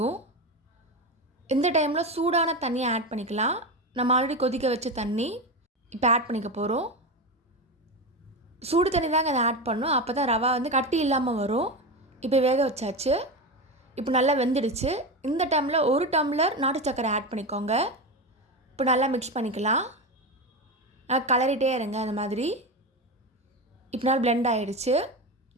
இந்த டைமில் சூடான தண்ணியை ஆட் பண்ணிக்கலாம். நம்ம ஆல்ரெடி கொதிக்க வச்ச தண்ணி இப்போ ஆட் பண்ணிக்க போகிறோம். சூடு தண்ணி தாங்க அதை ஆட் பண்ணணும், அப்போ தான் ரவா கட்டி இல்லாமல் வரும். இப்போ வேக வச்சாச்சு. இப்போ நல்லா வெந்துடுச்சு. இந்த டைமில் 1 டம்ளர் நாட்டு சர்க்கரை ஆட் பண்ணிக்கோங்க. இப்போ நல்லா மிக்ஸ் பண்ணிக்கலாம். நல்லா கலரிட்டே இருங்க அந்த மாதிரி. இப்போ நல்லா பிளெண்ட் ஆகிடுச்சு,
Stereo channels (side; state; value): both; normal; correlation 0.19